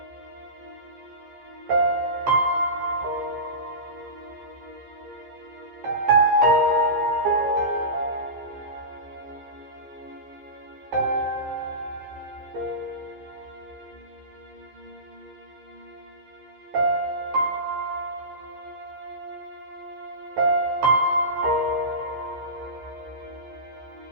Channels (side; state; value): left; late; 15 ms